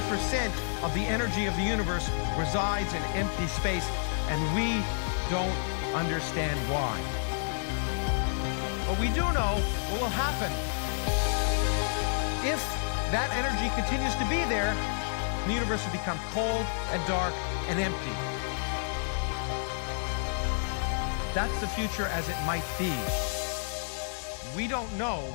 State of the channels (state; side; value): silent; right; digital silence